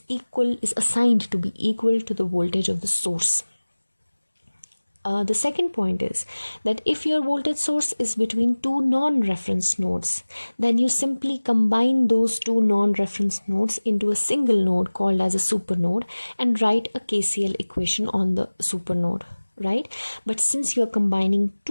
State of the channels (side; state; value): both; inverted; correlation -1.00